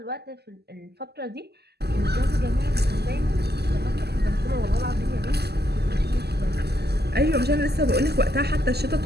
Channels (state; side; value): late; left; 0.47 ms